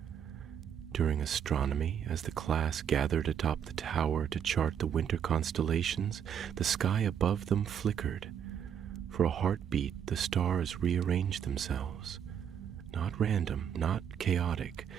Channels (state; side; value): quieter; left; 8.4 dB